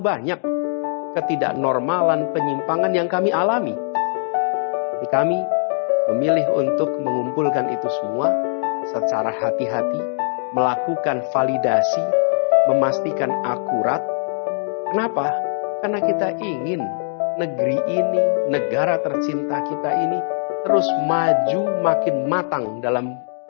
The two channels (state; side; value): silent; right; digital silence